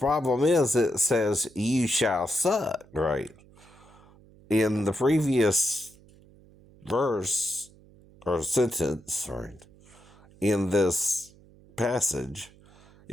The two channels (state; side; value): noise; right; hum, 26 dB below the sound